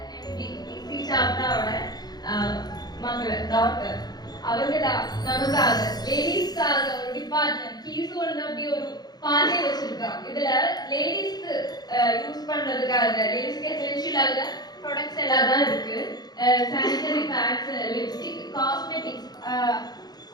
டாக்டர் அவங்க நமக்காக லேடிஸ்க்காக ஒரு டிபார்ட்மெண்ட் கீசோன்னு அப்படி ஒரு பாதை வச்சிருக்காங்க. இதுல லேடிஸ்க்கு யூஸ் பண்றதுக்காக லேடிஸ்க்கு எசென்ஷியலாக ப்ராடக்ட்ஸ் எல்லாம் தான் இருக்கு. சானிட்டரி பேட்ஸ், லிப்ஸ்டிக், காஸ்மெட்டிக்ஸ்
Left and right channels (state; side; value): late; right; 0.19 ms